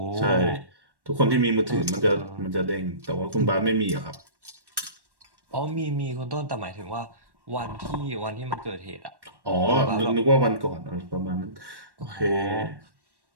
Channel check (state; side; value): late; left; 1.1 ms